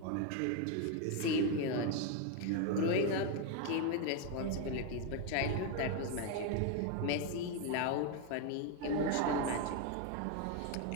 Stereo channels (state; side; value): different; both; correlation 0.02